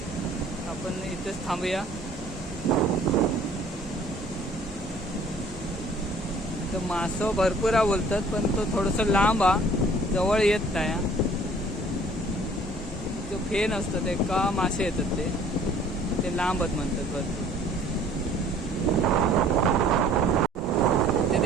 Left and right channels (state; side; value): normal; both; correlation 0.54